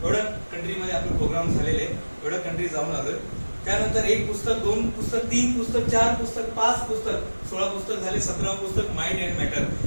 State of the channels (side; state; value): both; inverted; correlation -1.00